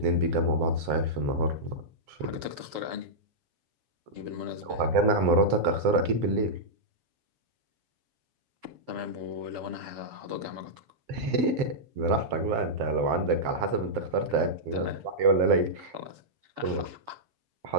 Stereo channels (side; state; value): left; late; 7.7 ms